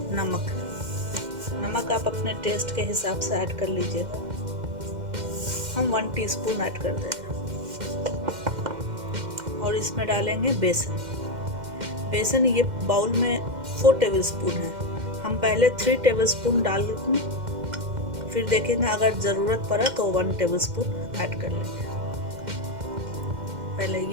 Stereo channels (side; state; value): left; late; 2.1 ms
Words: नमक। नमक आप अपने टेस्ट के हिसाब से ऐड कर लीजिएगा। हम 1 टीस्पून ऐड कर देंगे। और इसमें डालेंगे बेसन। बेसन ये बाउल में 4 टेबलस्पून है। हम पहले 3 टेबलस्पून डाल देंगे, फिर देखेंगे अगर ज़रूरत पड़ा तो 1 टेबलस्पून ऐड कर लेंगे। पहले